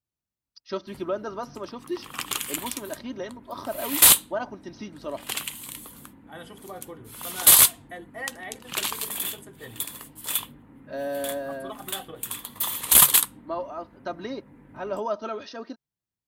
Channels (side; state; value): both; identical; correlation 1.00